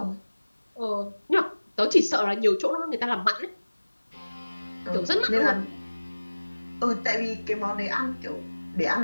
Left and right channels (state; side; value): inverted; both; correlation -1.00